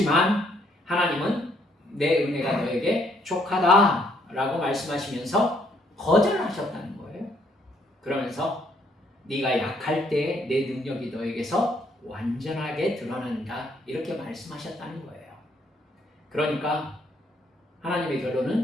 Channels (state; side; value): normal; both; correlation 0.69